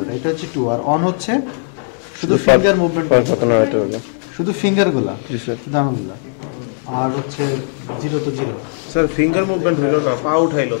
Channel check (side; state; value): right; silent; 56 dB below the other